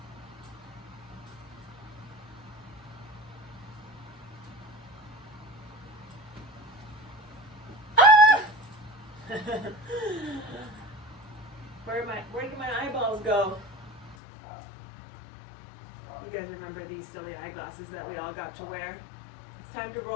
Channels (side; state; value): right; drops out; at 14.2 s